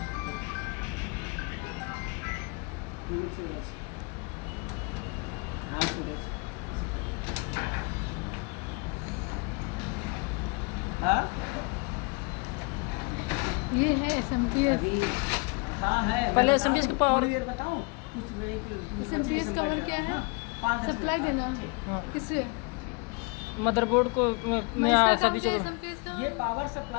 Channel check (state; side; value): quieter; right; 30.9 dB